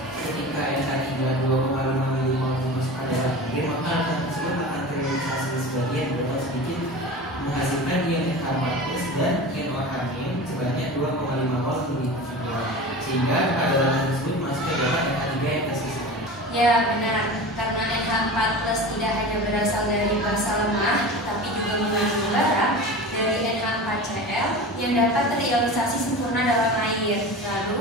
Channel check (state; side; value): normal; both; correlation 0.32